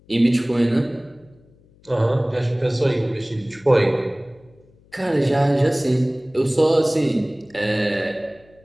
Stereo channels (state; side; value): noise; left; hum, 30 dB below the sound